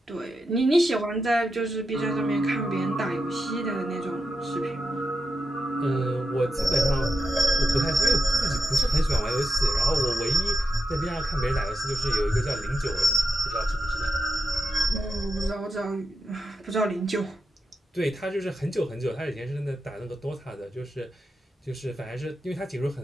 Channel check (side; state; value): both; normal; correlation 0.87